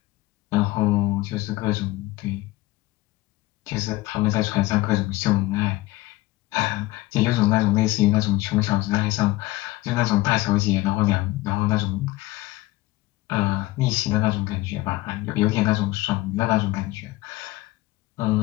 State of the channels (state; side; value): quieter; right; 18.4 dB